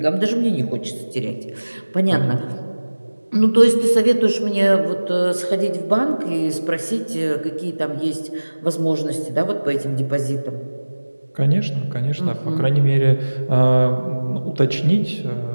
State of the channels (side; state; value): both; inverted; correlation -1.00